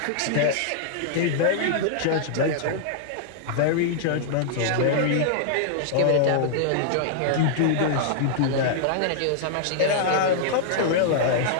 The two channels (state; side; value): different; both; correlation -0.01